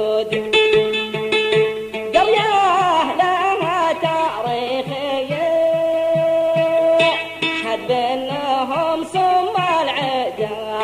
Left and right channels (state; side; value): identical; both; correlation 1.00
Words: قرية لها تاريخ يشهد بأنهم سم العدا،